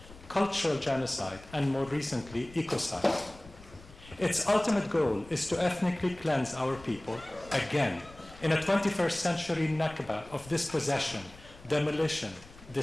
cultural genocide, and more recently, ecocide. Its ultimate goal is to ethnically cleanse our people again in a 21st century Nakba of dispossession, demolition,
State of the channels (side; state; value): left; noise; rumble, 20 dB below the sound